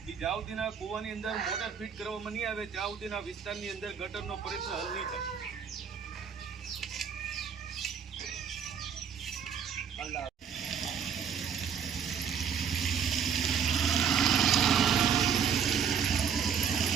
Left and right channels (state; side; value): quieter; left; 7.3 dB